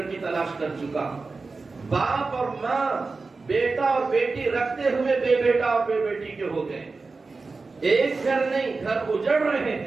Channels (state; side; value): quieter; left; 4.0 dB